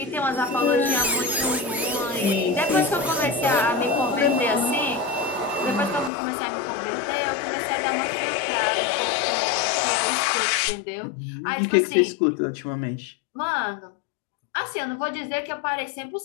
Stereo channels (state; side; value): drops out; right; at 6.1 s